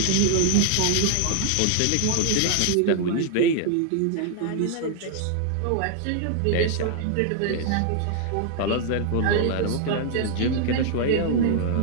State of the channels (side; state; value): both; different; correlation -0.01